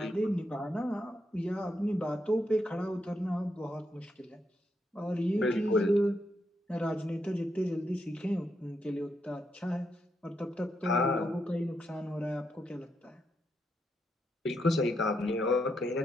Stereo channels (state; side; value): normal; both; correlation 0.81